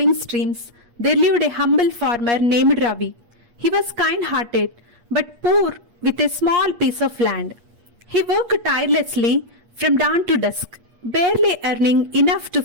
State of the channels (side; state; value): left; late; 8.4 ms